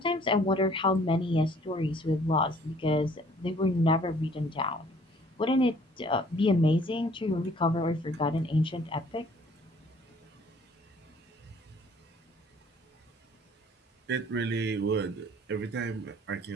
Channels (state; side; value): normal; both; correlation 0.57